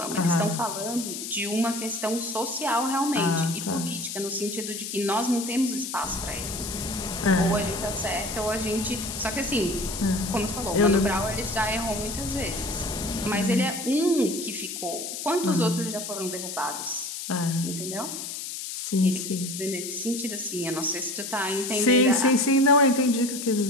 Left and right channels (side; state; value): left; noise; hiss, 7 dB below the sound